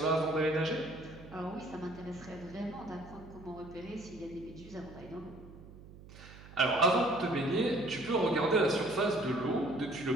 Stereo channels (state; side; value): noise; right; hum, 18 dB below the sound